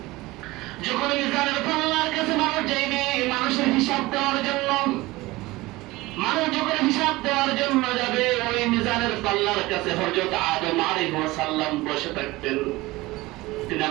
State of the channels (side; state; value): left; quieter; 20.1 dB